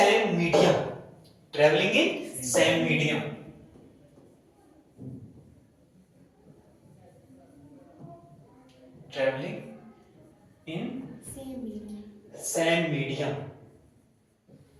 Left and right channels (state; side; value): identical; both; correlation 1.00